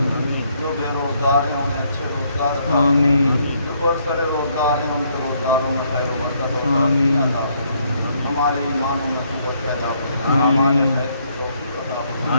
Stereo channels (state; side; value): inverted; both; correlation -0.70